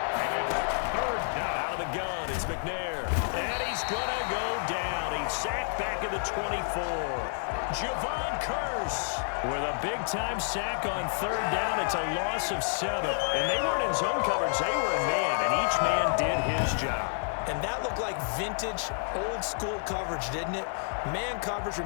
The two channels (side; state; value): right; silent; digital silence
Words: And it's third down. Out of the gun, it's McNair. And he's going to go down. He's sacked back at the 24. Javon Curse with a big-time sack on third down. It's a loss of 7. And they weren't in zone coverage. They were in man, and each man did his job. And that looked like vintage, old-school coverage, didn't it? Man coverage